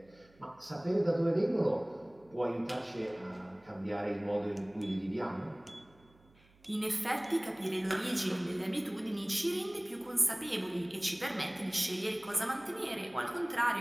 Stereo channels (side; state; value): right; noise; hum, 29 dB below the sound